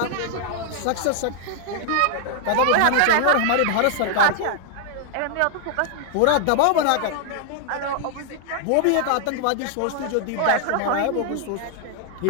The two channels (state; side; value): different; both; correlation 0.00